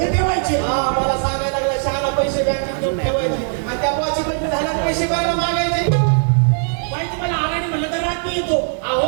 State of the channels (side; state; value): left; silent; 61 dB below the other